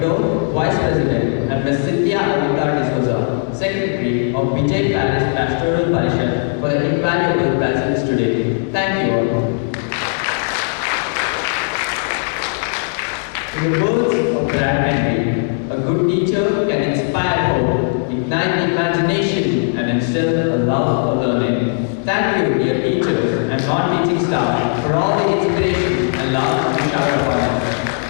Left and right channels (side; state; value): right; silent; digital silence